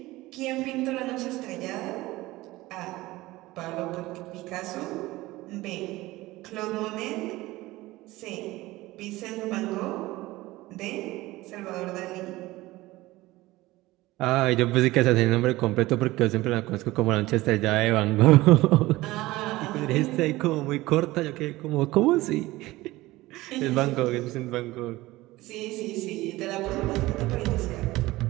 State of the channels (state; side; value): quieter; left; 18.8 dB